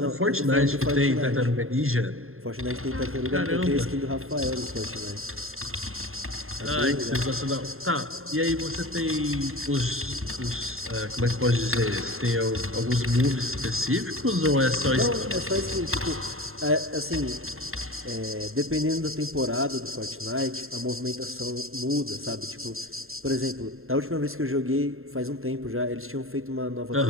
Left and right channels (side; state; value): left; late; 0.61 ms